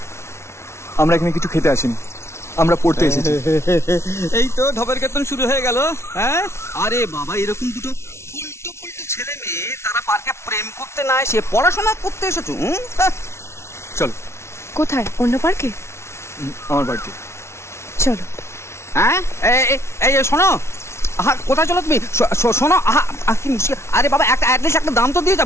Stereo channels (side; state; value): right; late; 0.13 ms